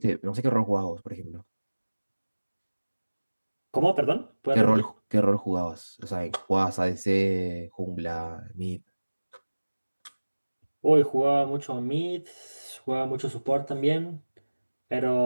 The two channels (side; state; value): both; inverted; correlation -1.00